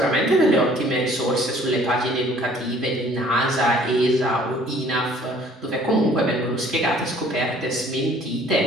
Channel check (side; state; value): both; normal; correlation 0.56